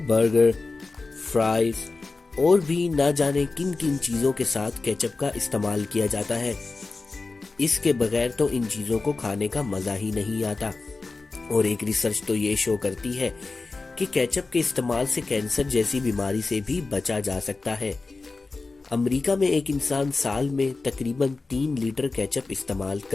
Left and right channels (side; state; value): right; quieter; 3.8 dB